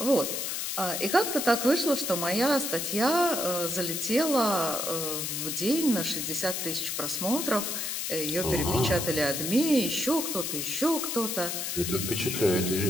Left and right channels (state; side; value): noise; left; hiss, 2 dB below the sound